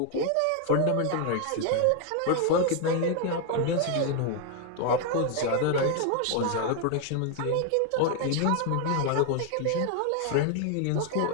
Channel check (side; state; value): both; different; correlation 0.00